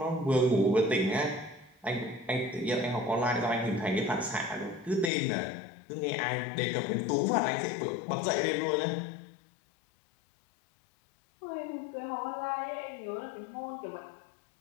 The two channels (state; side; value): drops out; right; at 5.1 s